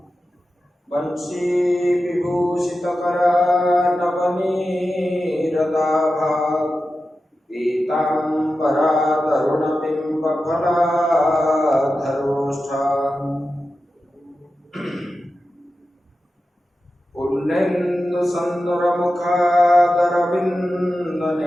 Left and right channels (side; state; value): both; normal; correlation 0.92